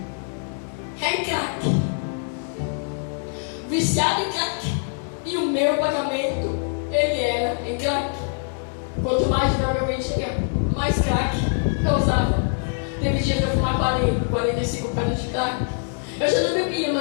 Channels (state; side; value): silent; right; 63 dB below the other